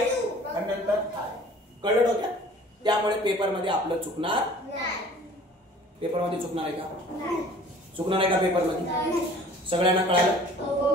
आणि नंतर हा आहे. कळलं डोक्यात. त्यामुळे पेपर मध्ये आपलं चुकणार पेपर मध्ये चुकणार आहे का चुकणार आहे का पेपर मध्ये. सगळ्यांना कळालं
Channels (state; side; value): normal; both; correlation 0.49